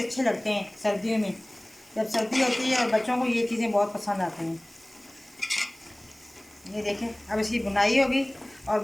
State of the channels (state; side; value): noise; right; hiss, 26 dB below the sound